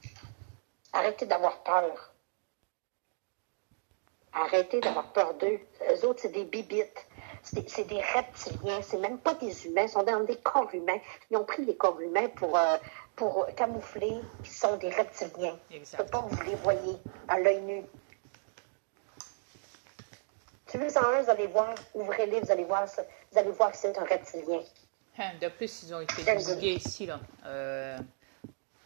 Arrêtez d'avoir peur. Arrêtez d'avoir peur d'eux. Eux autres, c'est des bibites. C'est des reptiliens. C'est même pas des humains. Ils sont dans des corps humains. Ils ont pris les corps humains pour camoufler qu'ils sont des reptiliens. Exact. Pas vous les voyez à l'œil nu. Si vous en un, vous allez voir, ouvrez-les, vous allez voir que c'est un reptilien. De plus, ils ont été divulgués ici, là.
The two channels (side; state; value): left; silent; digital silence